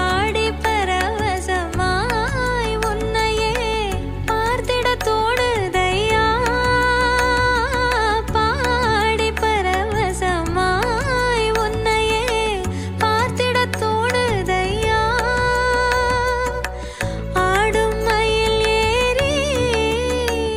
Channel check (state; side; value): identical; both; correlation 1.00